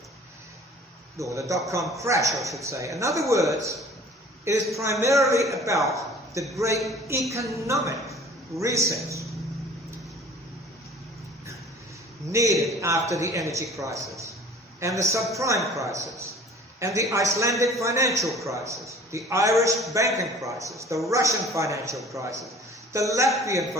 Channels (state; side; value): normal; both; correlation 0.47